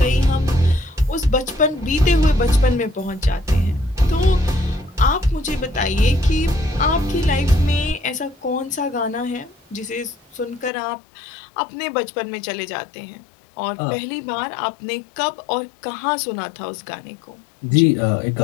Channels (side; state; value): right; drops out; at 10.7 s